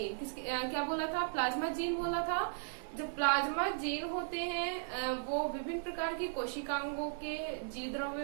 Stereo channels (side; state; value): left; silent; digital silence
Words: क्या बोला था? प्लाज्मा जीन बोला था। जो प्लाज्मा जीन होते हैं वो विभिन्न प्रकार की कोशिकांगों के जीव